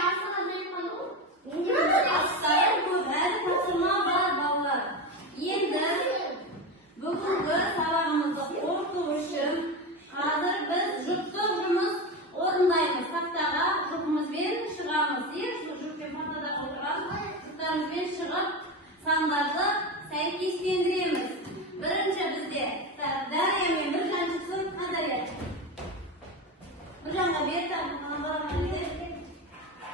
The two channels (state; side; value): normal; both; correlation 0.20